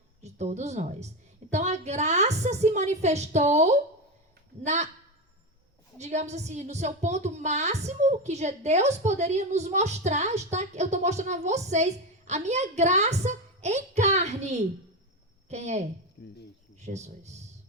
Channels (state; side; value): normal; both; correlation 0.15